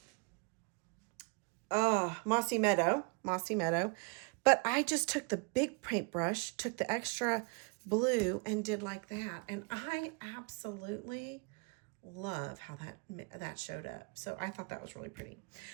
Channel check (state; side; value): quieter; left; 34.8 dB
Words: Mossy Meadow. But I just took the big paintbrush, took the extra blue and did like that. And I absolutely love how that showed up. So I thought that was really pretty.